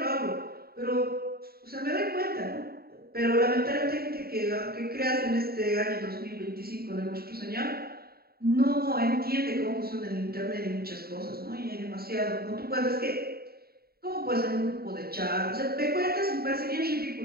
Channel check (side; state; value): left; late; 0.45 ms